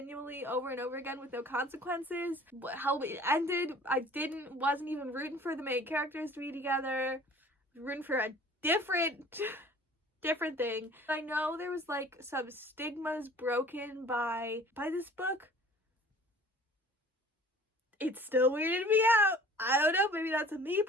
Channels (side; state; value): both; normal; correlation 0.48